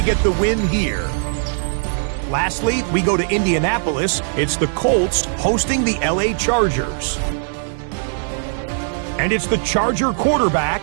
the win here. Lastly, we go to Indianapolis. It's the Colts hosting the LA Chargers. And it's the Charger quarterback.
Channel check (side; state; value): left; silent; digital silence